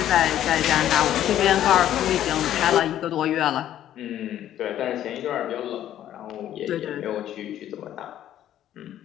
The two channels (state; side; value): quieter; right; 11.8 dB